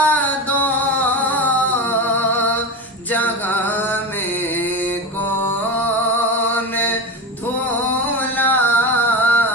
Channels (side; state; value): both; normal; correlation 0.23